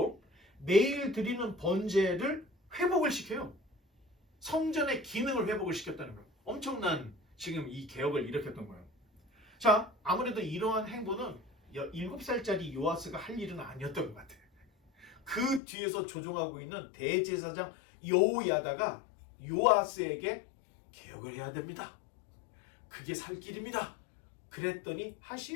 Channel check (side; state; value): right; drops out; at 15.6 s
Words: 매일 드리는 번제를 회복을 시켜요. 성전의 기능을 회복을 시켰다는 거예요. 엄청난 지금 이 개혁을 일으켰던 거예요. 자, 아무래도 이러한 행보는 7살짜리 요아스가 할 일은 아니었던 것 같아요. 그 뒤에서 조종하고 있는 대제사장 여호야다가 요아스에게 개혁을 해야 됩니다. 그게 살 길입니다. 그랬더니